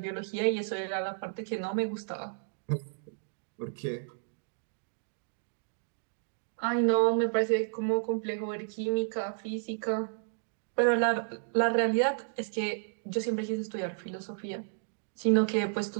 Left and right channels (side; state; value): left; silent; digital silence